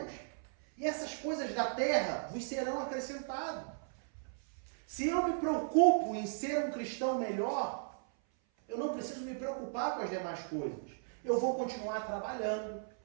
e essas coisas da terra vos serão acrescentadas. Se eu me preocupo em ser um cristão melhor, eu não preciso me preocupar com as demais coisas. Eu vou continuar trabalhando,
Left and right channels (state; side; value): silent; left; 54 dB below the other